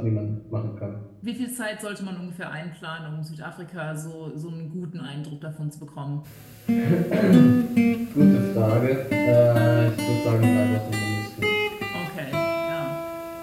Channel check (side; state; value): both; identical; correlation 1.00